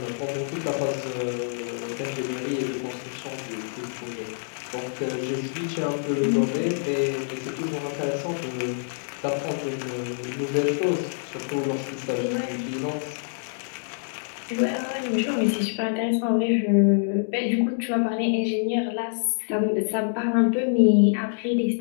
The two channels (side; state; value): right; silent; 61 dB below the other